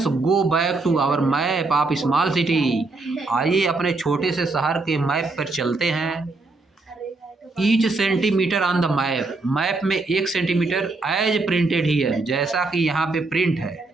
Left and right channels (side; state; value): left; quieter; 3.5 dB